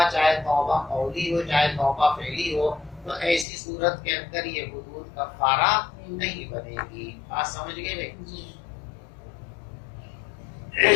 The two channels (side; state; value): right; drops out; at 3.5 s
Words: چاہے توبہ قولی ہو چاہے توبہ فعلی ہو، تو ایسی صورت کے اندر یہ حدود کفارہ نہیں بنے گی. بات سمجھ گئے بھائی؟